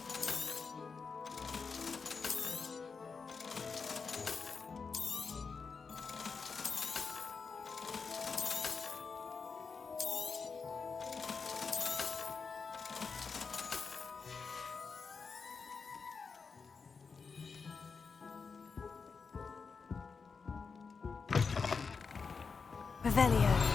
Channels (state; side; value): quieter; right; 5.1 dB